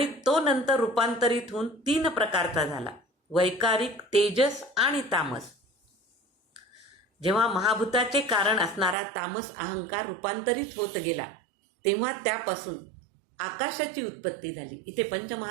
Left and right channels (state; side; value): drops out; left; at 9.0 s